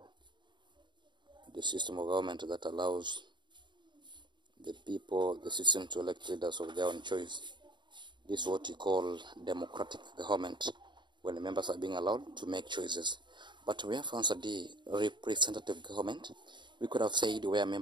the system of government that allows the citizens to elect leaders of their own choice. This is what you call democratic government, when the members are being allowed to make choices. But we have answered the representative government. We could have said where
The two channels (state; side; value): late; left; 0.22 ms